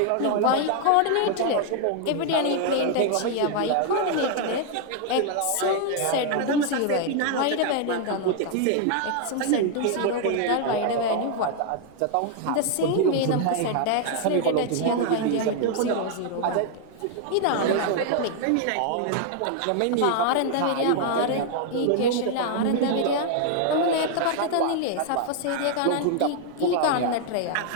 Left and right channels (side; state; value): both; different; correlation 0.00